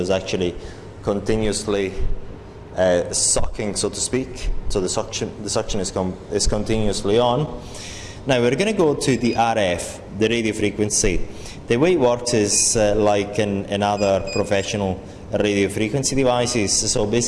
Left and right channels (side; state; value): both; identical; correlation 1.00